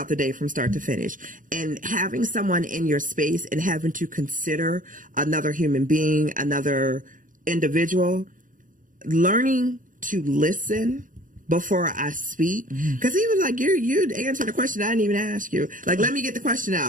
the day from start to finish. And having someone in your space and having to consider another human being, another individual, learning to listen before I speak, because he was like, you answered the question I didn't even ask you. Like, let me get the question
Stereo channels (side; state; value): left; late; 0.38 ms